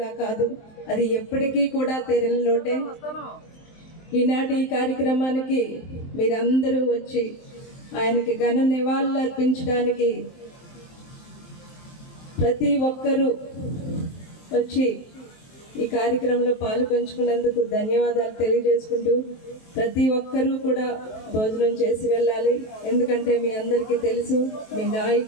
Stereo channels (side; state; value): right; late; 23 ms